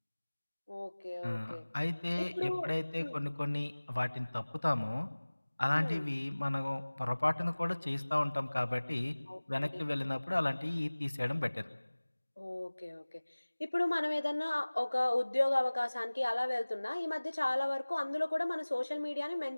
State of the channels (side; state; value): both; inverted; correlation -1.00